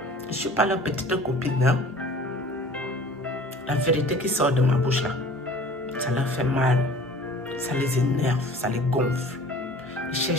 Je ne suis pas leur petite copine. Hein? La vérité qui sort de ma bouche là, ça leur fait mal, ça les énerve, ça les gonfle. Ils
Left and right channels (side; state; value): both; normal; correlation 0.46